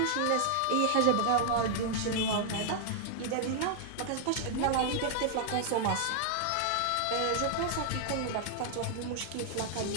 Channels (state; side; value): different; both; correlation 0.00